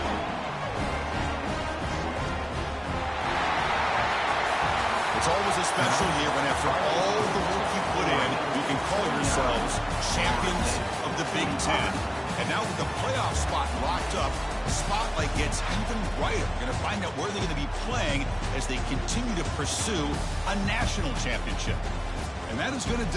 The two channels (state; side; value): identical; both; correlation 1.00